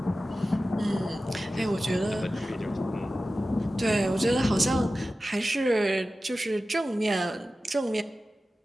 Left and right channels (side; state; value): both; normal; correlation 0.95